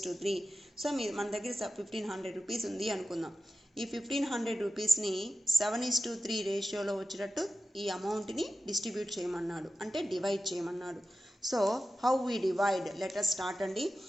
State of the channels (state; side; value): normal; both; correlation 0.92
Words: So మన దగ్గర 1500 రూపీస్ ఉంది అనుకుందాం. ఈ 1500 రూపీస్ని 7:3 రేషియోలో వచ్చేటట్టు ఈ అమౌంట్ని డిస్ట్రిబ్యూట్ చేయమన్నాడు, అంటే డివైడ్ చేయమన్నాడు. So how we divide? Let us start అండి.